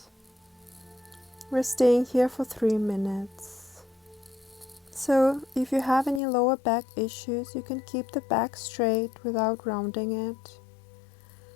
We're staying here for 3 minutes. So if you have any lower back issues, you can keep the back straight without rounding it.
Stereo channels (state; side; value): drops out; right; at 6.2 s